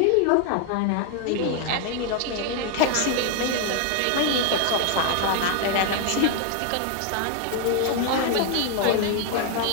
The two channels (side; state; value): both; different; correlation 0.01